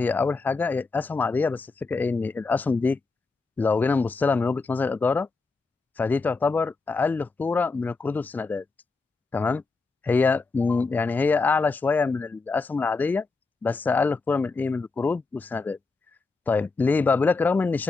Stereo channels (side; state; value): right; quieter; 4.1 dB